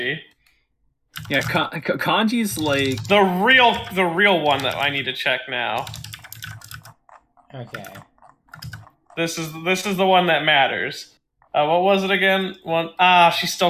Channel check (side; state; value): both; identical; correlation 1.00